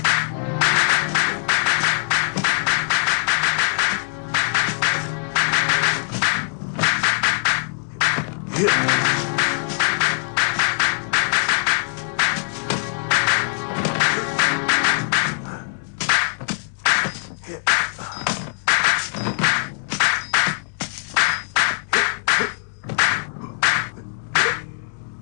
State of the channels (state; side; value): silent; right; 65 dB below the other